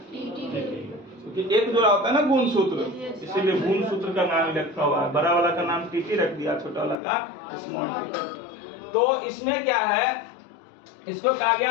क्योंकि एक जोड़ा होता है ना गुणसूत्र, इसीलिए गुणसूत्र का नाम लिखा हुआ है। बड़ा वाला का नाम टीटी रख दिया, छोटा वाला का स्मॉल टीटी। तो इसमें क्या है, इसको कहा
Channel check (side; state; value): right; drops out; at 7.0 s